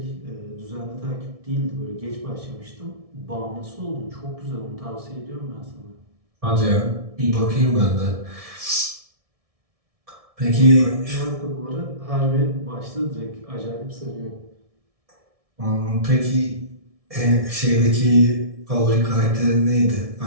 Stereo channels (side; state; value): left; late; 1.7 ms